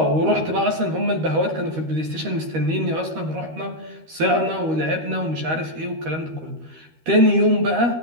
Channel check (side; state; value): left; late; 13 ms